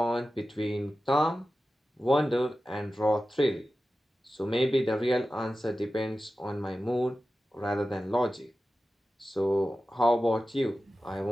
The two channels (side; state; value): both; normal; correlation 0.94